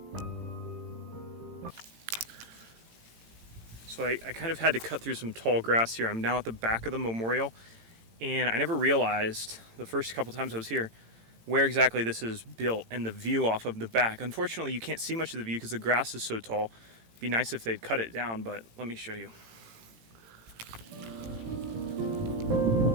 So I kind of had to cut through some tall grass here. I'm now at the back of the memorial, and I never realized the first couple times I was here where exactly this is built and the view off of the back. Unfortunately, you can't see much of the view because the grass is so tall. It'd be nice if they'd cut it down, but let me show you.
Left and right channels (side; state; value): left; late; 18 ms